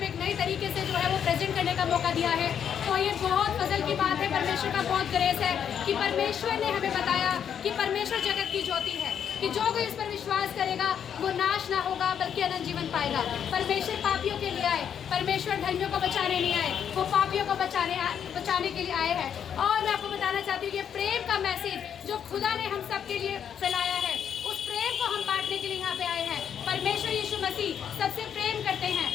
एक नए तरीके से जो है वो प्रेजेंट करने का मौका दिया है। तो ये बहुत फजल की बात है, परमेश्वर का बहुत ग्रेस है कि परमेश्वर ने हमें बताया कि परमेश्वर जगत की ज्योति है, कि जो कोई इस पर विश्वास करेगा वो नाश ना होगा बल्कि अनंत जीवन पाएगा। परमेश्वर पापियों के लिए आए, परमेश्वर धर्मियों को बचाने नहीं आए, वो पापियों को बचाने के लिए आए हैं। और मैं आपको बताना चाहती हूँ ये प्रेम का मैसेज जो खुदा ने हम सब के लिए फैलाया है, उस प्रेम को हम बांटने के लिए यहाँ पे आए हैं। परमेश्वर यीशु मसीह सबसे प्रेम करते हैं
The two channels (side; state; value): right; quieter; 8.4 dB